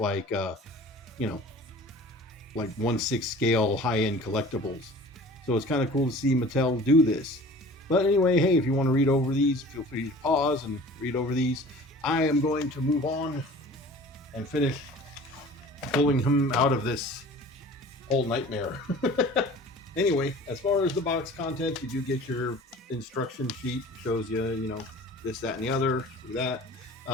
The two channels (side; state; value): both; normal; correlation 0.44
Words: like 1/6 scale high-end collectibles. So it's kind of cool to see Mattel do this. But anyway, hey, if you want to read over these, feel free to pause and read over these. I am going to move on and finish pulling him out of this whole nightmare. Anyway, as far as the box contents, you do get your instruction sheet. It shows you, this, that, and the other, through that.